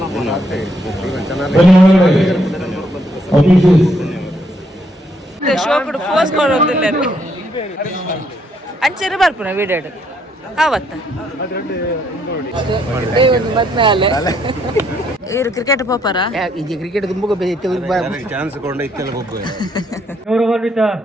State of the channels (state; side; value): normal; both; correlation 0.72